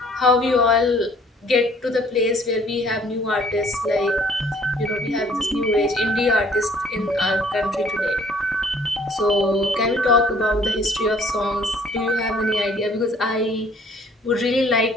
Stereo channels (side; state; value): both; normal; correlation 0.58